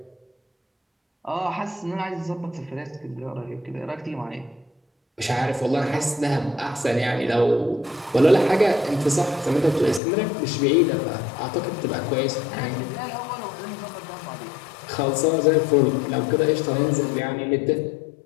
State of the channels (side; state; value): right; drops out; at 10.0 s